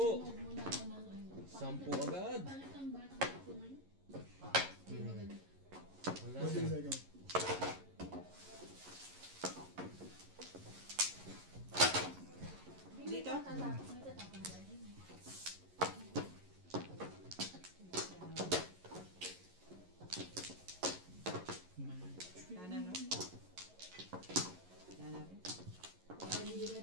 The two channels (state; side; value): late; left; 11 ms